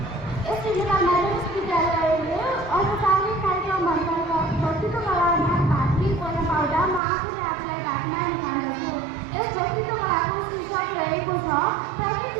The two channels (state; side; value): drops out; left; at 7.0 s